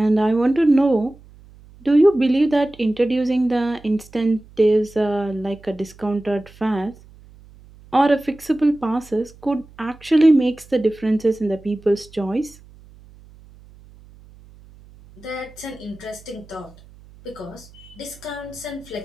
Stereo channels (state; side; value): noise; right; hum, 24 dB below the sound